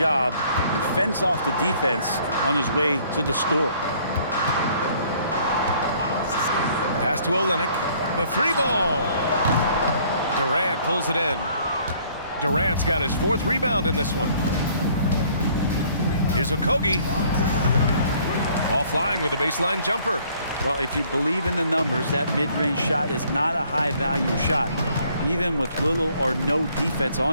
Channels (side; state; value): both; inverted; correlation -0.60